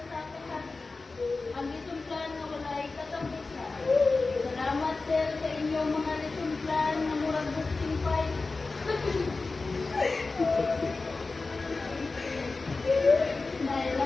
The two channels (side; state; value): right; quieter; 3.8 dB